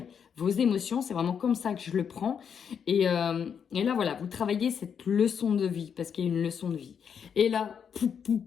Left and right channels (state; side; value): quieter; right; 7.3 dB